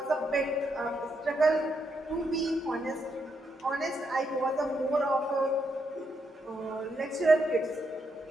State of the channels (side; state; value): both; normal; correlation 0.79